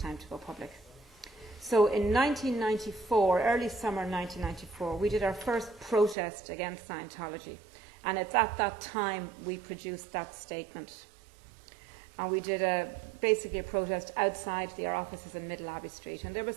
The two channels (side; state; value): left; drops out; at 6.2 s